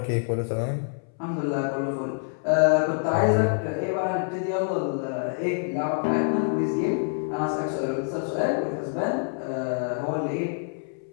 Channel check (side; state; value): right; silent; 61 dB below the other